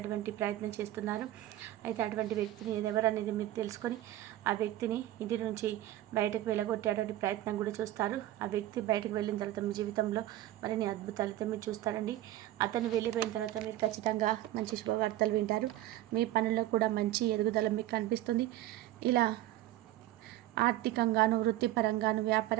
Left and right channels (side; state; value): left; quieter; 14.5 dB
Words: ప్రయత్నం చేస్తున్నారు. అయితే అటువంటి వ్యక్తిని ఎవరనేది మీరు తెలుసుకొని ఆ వ్యక్తిని ఇంటి నుంచి బయటకు వెళ్ళగొట్టేటువంటి ప్రయత్నం కూడా చూస్తారు. ఆ వ్యక్తి బయటకు వెళ్ళిన తర్వాత మీ జీవితంలో మరిన్ని అద్భుతాలతో మీరు చూస్తారండి. అతను వెళ్ళిపోయిన తర్వాత మీరు ఖచ్చితంగా మంచి శుభవార్తలు వింటారు. మీ పనుల్లో కూడా మంచి ఎదుగుదల మీకు కనిపిస్తుంది. ఇలా ఆర్థికంగాను, వృత్తిపరంగాను,